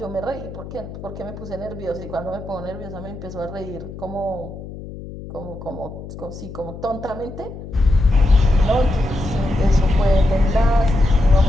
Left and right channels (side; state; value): left; noise; hum, 12 dB below the sound